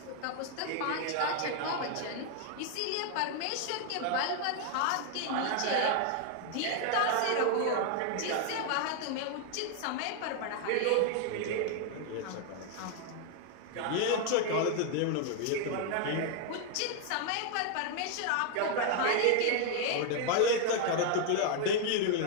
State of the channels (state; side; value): different; both; correlation 0.00